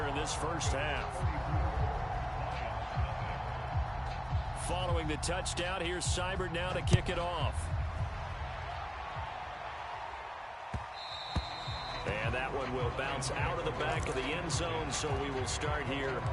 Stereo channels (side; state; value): both; identical; correlation 1.00